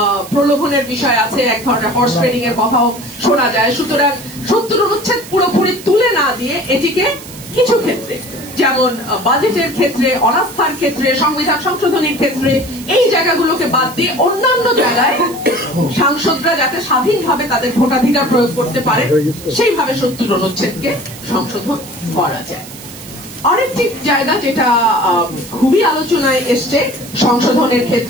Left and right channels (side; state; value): right; noise; hiss, 16 dB below the sound